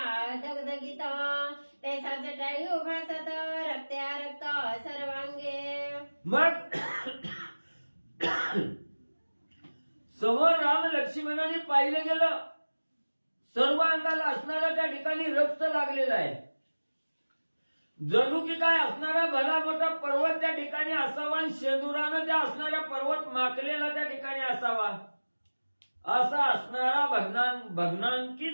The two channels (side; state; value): both; inverted; correlation -1.00